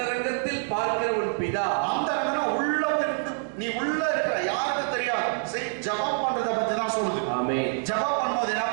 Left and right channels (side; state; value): left; silent; 61 dB below the other